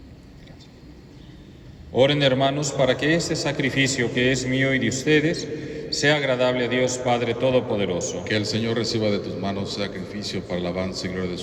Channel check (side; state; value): both; identical; correlation 1.00